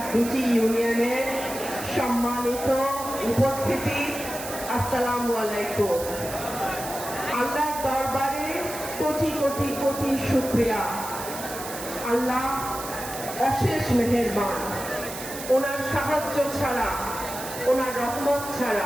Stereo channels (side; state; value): right; noise; hiss, 10 dB below the sound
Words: ২টি ইউনিয়নের সম্মানিত উপস্থিতি, আসসালামু আলাইকুম। আল্লাহর দরবারে কোটি কোটি কোটি শুকরিয়া। আল্লাহ অশেষ মেহেরবান। ওনার সাহায্য ছাড়া, ওনার রহমত